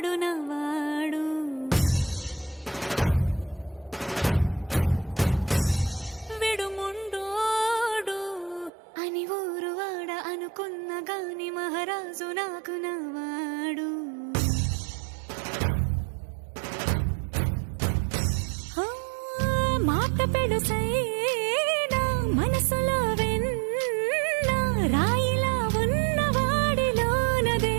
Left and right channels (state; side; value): drops out; left; at 8.7 s